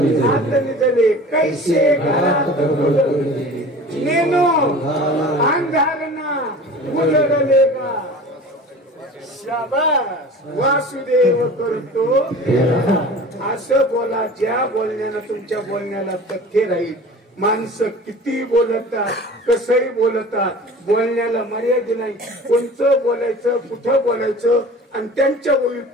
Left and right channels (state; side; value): normal; both; correlation 0.40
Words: आत निजले, कैसे घरात नेनो अंधारना उजळलेगा. शाबास वासुदेव करतो असं बोला, ज्या बोलण्यानं तुमच्या बोलण्याला तथ्य राहील. माणसं किती बोलतात, कसंही बोलतात, बोलण्याला मर्यादा नाही. कोणचं बोलायचं, कुठं बोलायचं, आणि त्यांच्या